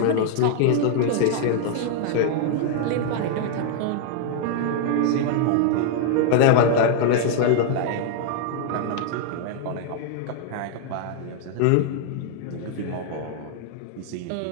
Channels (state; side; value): different; both; correlation 0.00